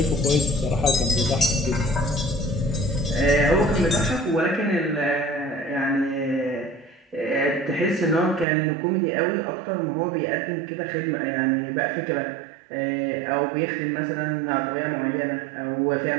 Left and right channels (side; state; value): left; drops out; at 8.5 s